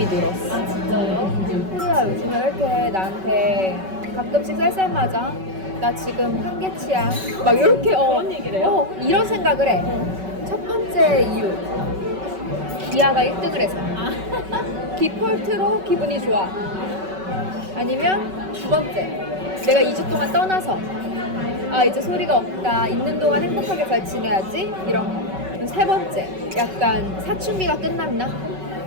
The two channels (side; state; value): left; late; 5.3 ms